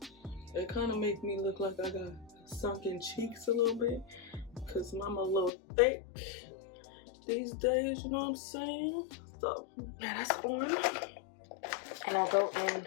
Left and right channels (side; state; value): right; drops out; at 5.5 s